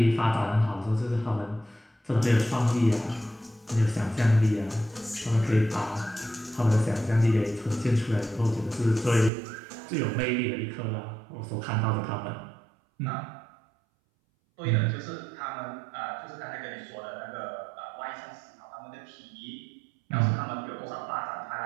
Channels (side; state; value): left; drops out; at 9.3 s